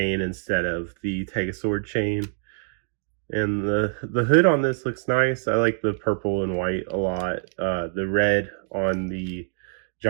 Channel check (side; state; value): left; silent; 59 dB below the other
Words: instead of the Tega Sword chain. And the hood on this looks nice. I like the purple and white a lot. The red on the